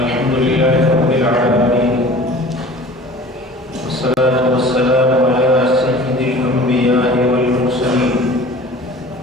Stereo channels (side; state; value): both; normal; correlation 0.43